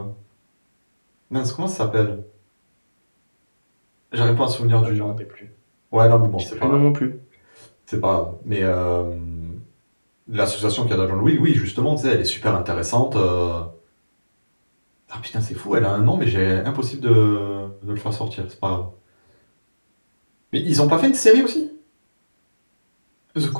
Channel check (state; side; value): inverted; both; correlation -1.00